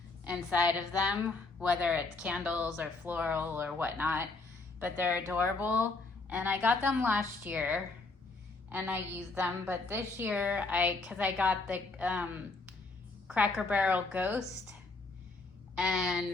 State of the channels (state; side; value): quieter; right; 3.6 dB